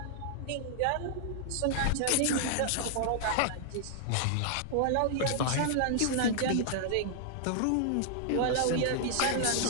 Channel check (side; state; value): both; different; correlation -0.01